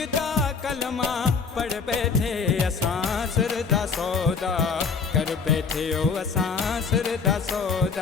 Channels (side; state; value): right; quieter; 5.3 dB